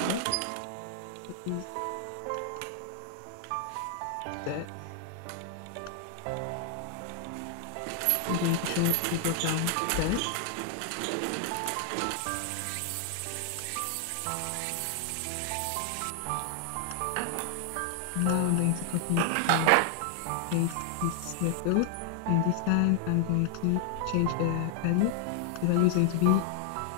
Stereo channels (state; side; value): different; both; correlation 0.00